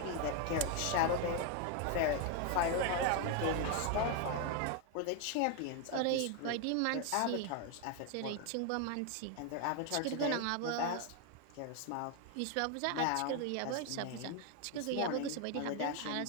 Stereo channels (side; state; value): both; different; correlation 0.01